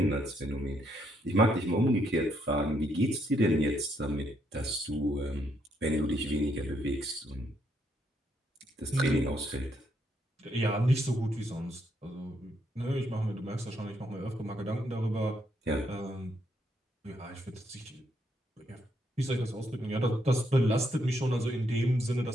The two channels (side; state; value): both; normal; correlation 0.75